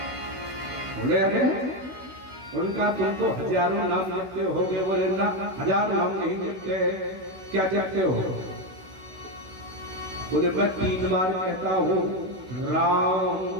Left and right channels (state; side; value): late; left; 16 ms